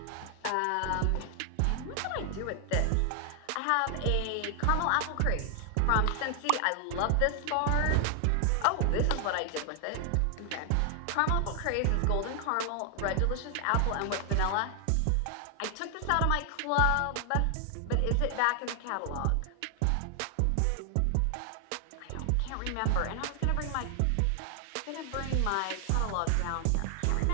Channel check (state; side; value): different; both; correlation 0.00